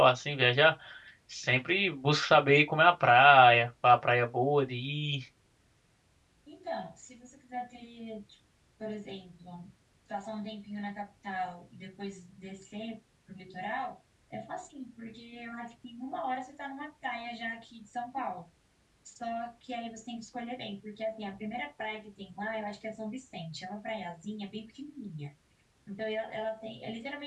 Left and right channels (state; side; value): identical; both; correlation 1.00